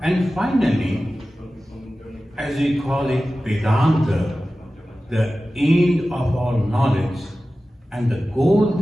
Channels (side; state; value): both; normal; correlation 0.95